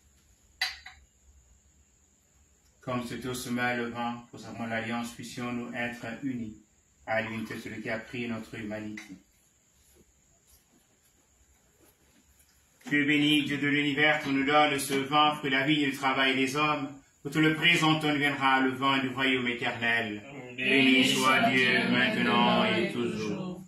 Comme c'est au sommet le vent, pour savons l'alliance, puissions-nous être unis à l'unité de celui qui a pris notre humanité. Tu es béni, Dieu de l'univers, tu nous donnes ce vent, fruit de la vie et du travail des hommes. Pour te le présentons, viendra le vent du royaume éternel. Béni soit Dieu, maintenant et toujours.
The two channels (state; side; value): identical; both; correlation 1.00